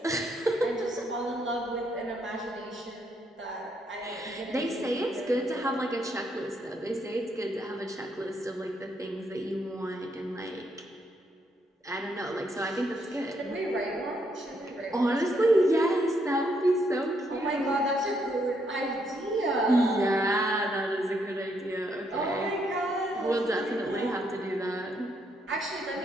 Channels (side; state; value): both; normal; correlation 0.75